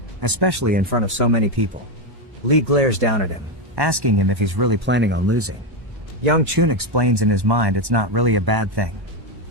especially in front of so many people. Lee glares down at him, asking him if he's really planning on losing. Young Chun explains in his mind it's not really a bad thing.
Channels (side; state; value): left; late; 1.1 ms